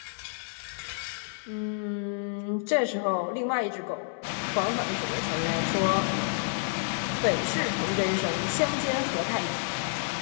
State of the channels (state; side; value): silent; right; digital silence